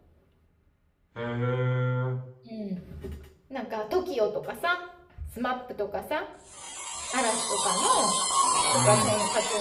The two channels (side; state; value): both; identical; correlation 1.00